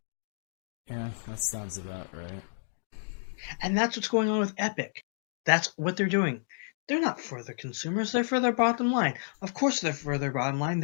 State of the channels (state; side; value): silent; right; digital silence